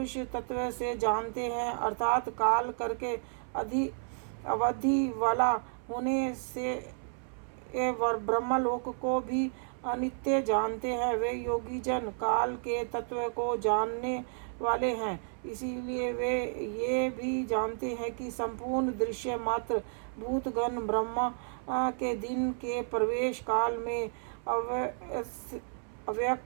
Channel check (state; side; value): silent; left; 57 dB below the other